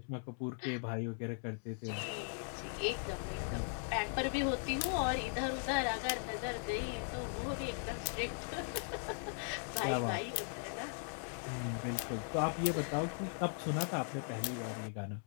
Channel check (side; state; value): right; silent; 52 dB below the other